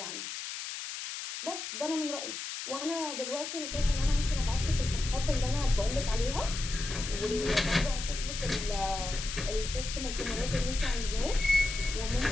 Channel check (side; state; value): left; noise; hiss, 6 dB below the sound